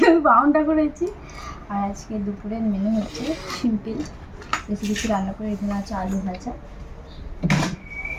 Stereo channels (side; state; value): both; identical; correlation 1.00